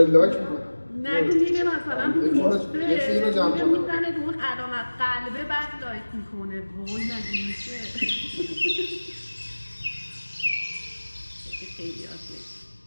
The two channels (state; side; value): inverted; both; correlation -1.00